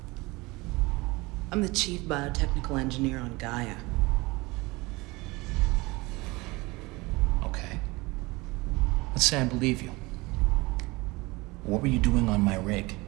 I'm the chief biotechnical engineer on Gaia. Okay. Let's say I believe you. What were you doing on my rig?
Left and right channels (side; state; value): left; quieter; 23.1 dB